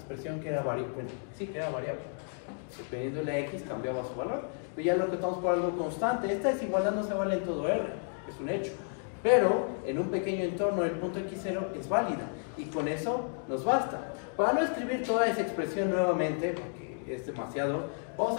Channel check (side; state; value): right; silent; 56 dB below the other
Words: que era variable. Sí, que era variable. Dependiendo de la x cambiaba su valor. Pero ya lo acotamos por algo constante. Esta desigualdad no se vale en todo R, es un hecho. Pero en un pequeño entorno el punto x0 es válida. Y con eso nos basta. Para no escribir toda esa expresión nuevamente, porque es demasiado,